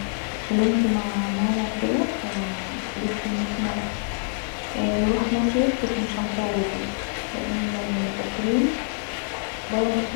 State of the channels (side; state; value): right; silent; 62 dB below the other